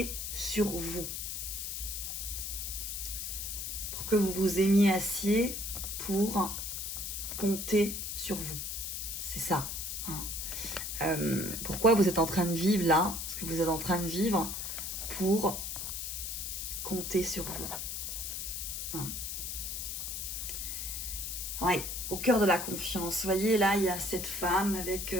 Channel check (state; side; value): noise; left; hiss, 4 dB below the sound